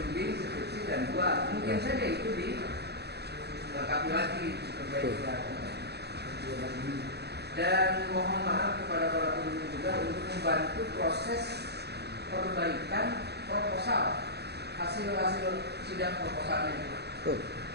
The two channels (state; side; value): late; left; 0.48 ms